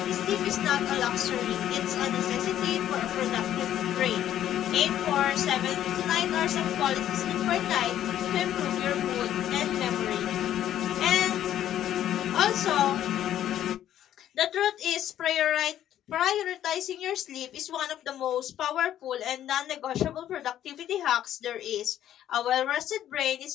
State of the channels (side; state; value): right; quieter; 11.5 dB